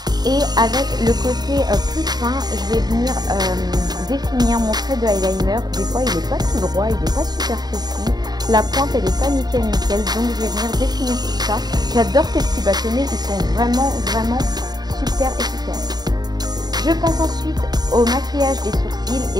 Et avec le côté plus fin, je vais venir définir mon trait de eyeliner. Des fois, il n'est pas tout droit, il n'est pas super précis. La pointe, elle n'est pas nickel. Donc, je vais venir définir tout ça. J'adore ces petits bâtonnets. Ils sont vraiment super efficaces. Je passe ensuite au maquillage des sourcils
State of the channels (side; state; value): left; late; 0.20 ms